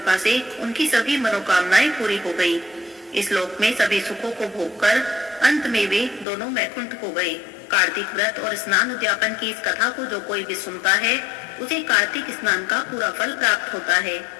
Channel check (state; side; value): drops out; right; at 6.2 s